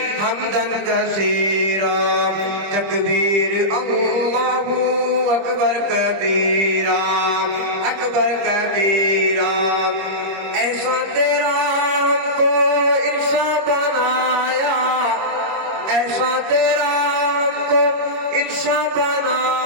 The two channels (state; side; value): late; left; 25 ms